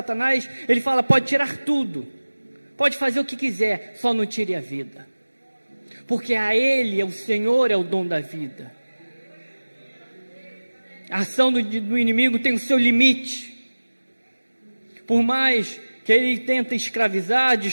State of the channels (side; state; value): both; inverted; correlation -1.00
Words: ele fala: pode tirar tudo, pode fazer o que quiser, só não tire a vida, porque a Ele, o Senhor, é o dom da vida. A ação do inimigo tem o seu limite. Por mais que ele tenta escravizar,